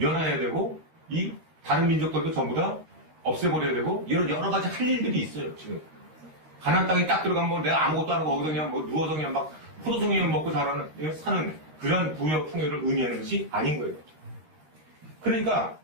되고 이 다른 민족들도 전부 다 없애버려야 되고 이런 여러 가지 할 일들이 있어요 지금. 가나안 땅에 딱 들어가면 내가 아무것도 안 하고 거기서 그냥 누워서 그냥 막 포도송이만 먹고 사는 그런 부여 풍요를 의미하는 것이 아닌 거예요. 그러니까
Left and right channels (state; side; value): late; left; 13 ms